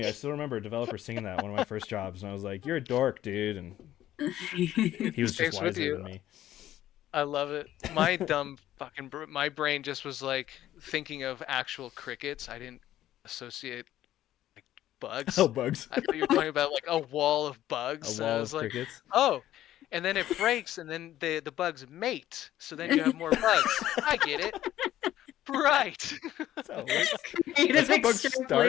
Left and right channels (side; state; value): right; quieter; 13.1 dB